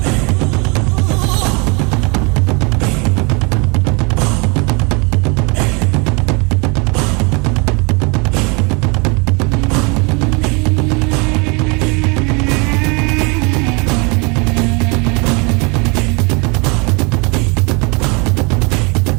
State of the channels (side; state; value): left; quieter; 30.5 dB